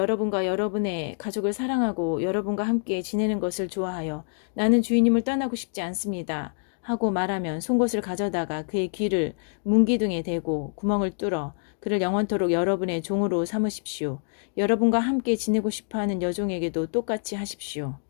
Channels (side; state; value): right; silent; 61 dB below the other